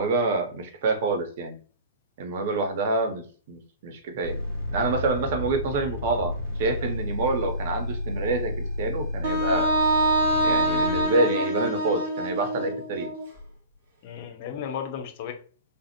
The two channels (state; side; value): inverted; both; correlation -0.40